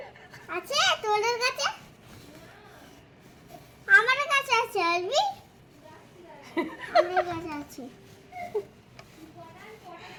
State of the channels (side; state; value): both; identical; correlation 1.00